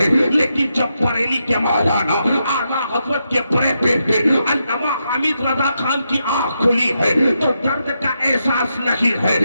لیکن جب بریلی کے مولانا اعلیٰ حضرت کے بڑے بیٹے علامہ حمید رضا خان کی آنکھ کھلی ہے تو درد کا احساس نہیں ہے،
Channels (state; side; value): inverted; both; correlation -0.84